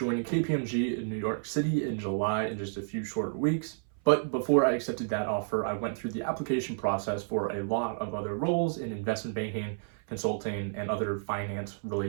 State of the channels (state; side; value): silent; left; 57 dB below the other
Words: KPMG in New York City in July in just a few short weeks, but before I accepted that offer, I went through the application process for a lot of other roles in investment banking, consulting, and other